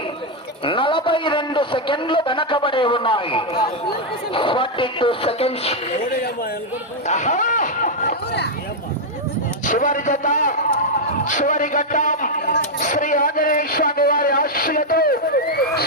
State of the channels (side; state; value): both; normal; correlation -0.01